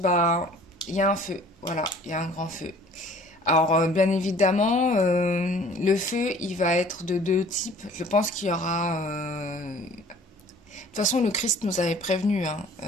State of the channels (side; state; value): both; normal; correlation 0.51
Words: il y a un feu. Voilà, il y a un grand feu. Alors, bien évidemment, le feu, il va être de deux types. Je pense qu'il y aura. De toute façon, le Christ nous avait prévenu, hein.